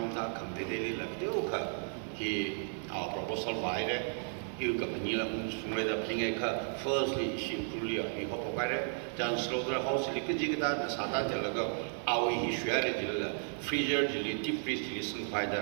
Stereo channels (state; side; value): silent; left; 55 dB below the other